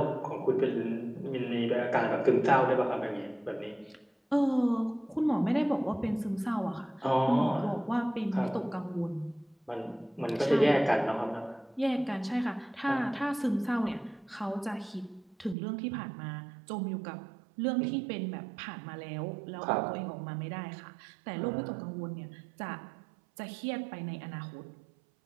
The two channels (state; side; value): drops out; left; at 15.6 s